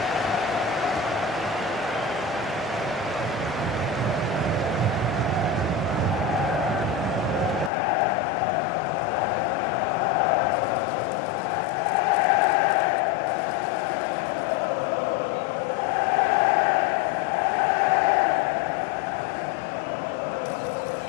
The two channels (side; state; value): right; drops out; at 7.7 s